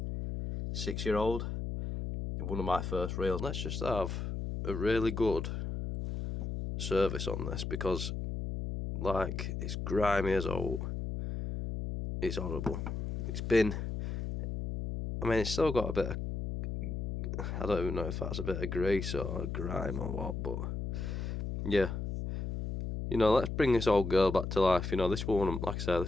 6-year-old. One of my first reels. Let's just have a really good service on this because, like, it's grimy as old. It's horrible. It's still got a bit of, I don't even know if that's a bit of grease or grime or what, but yeah. Let's bring this old girl back to life. This one, like I said,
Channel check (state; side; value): noise; left; hum, 4 dB below the sound